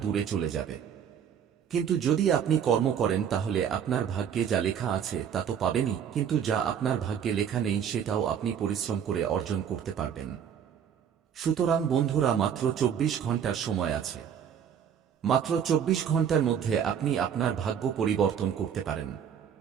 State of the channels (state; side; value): quieter; left; 8.3 dB